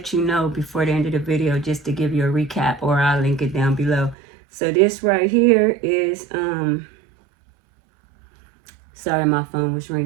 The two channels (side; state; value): left; drops out; at 4.2 s